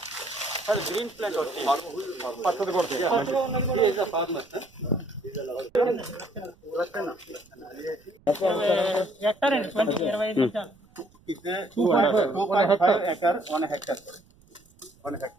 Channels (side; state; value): right; noise; rumble, 30 dB below the sound